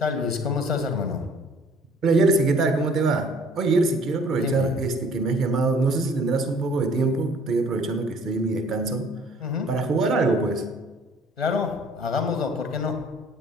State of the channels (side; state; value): both; normal; correlation 0.55